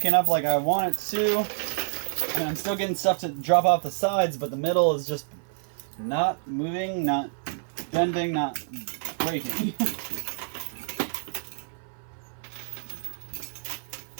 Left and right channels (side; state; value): left; silent; 60 dB below the other